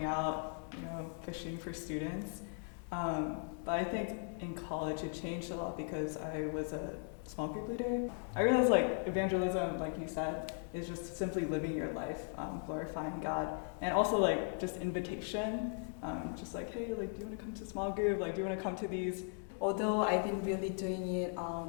out, fishing for students. But I think in college it changed a lot because I was a small group leader. I realized evangelism, like you said, is just simply living your life, glorifying God, and also just invitation, hey, do you want to come to small group? Do you want to come to these? Although I've been really doing it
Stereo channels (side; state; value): right; silent; 52 dB below the other